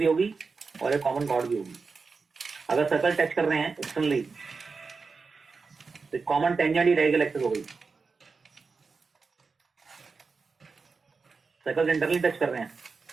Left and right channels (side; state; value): left; quieter; 4.6 dB